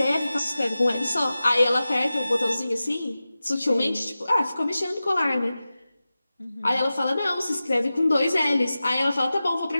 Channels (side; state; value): both; inverted; correlation -0.95